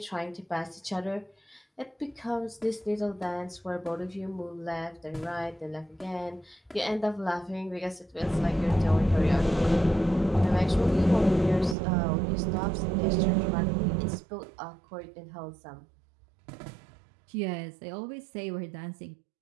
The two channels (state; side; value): drops out; left; at 11.8 s